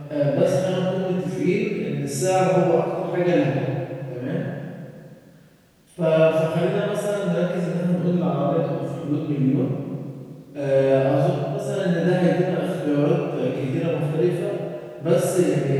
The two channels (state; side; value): identical; both; correlation 1.00